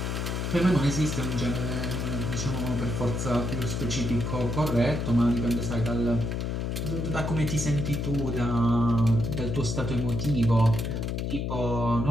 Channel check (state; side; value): noise; left; hum, 1 dB below the sound